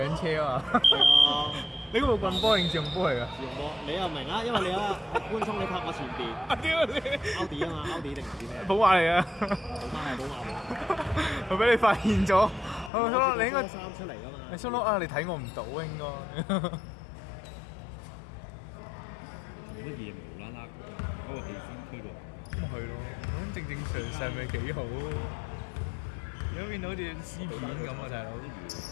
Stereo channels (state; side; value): drops out; right; at 12.9 s